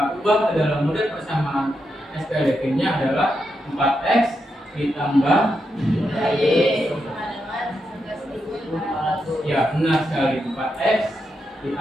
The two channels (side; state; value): both; normal; correlation 0.84